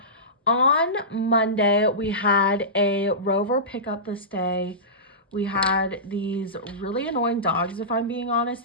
on Monday, we had a Rover pickup this day We had these really annoying dogs, if I'm being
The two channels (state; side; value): normal; both; correlation -0.20